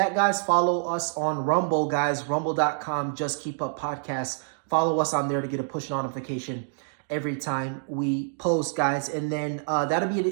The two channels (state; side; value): silent; left; digital silence